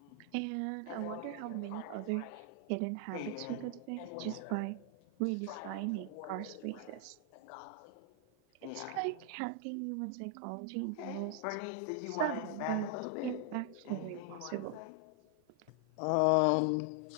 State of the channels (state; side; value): different; both; correlation 0.00